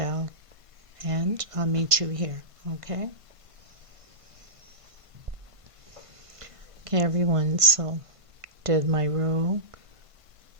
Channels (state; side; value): late; left; 1.5 ms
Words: and I'll meet you here. Okay. Okay, everyone, so did my row,